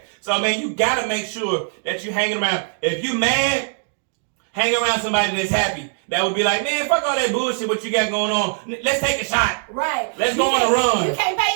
So, man, you got to make sure that you're hanging around. If you mad, hang around somebody that's happy. That would be like, man, fuck all that bullshit what you got going on. Let's take a shot. Right. Let's go on a run. You can't pay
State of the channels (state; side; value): silent; left; 63 dB below the other